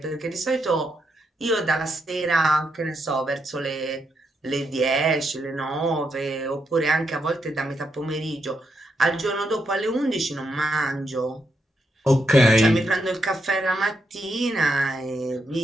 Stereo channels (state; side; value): normal; both; correlation 0.81